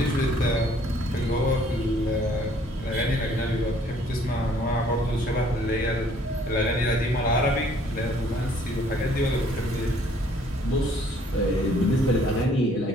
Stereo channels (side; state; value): both; normal; correlation 0.60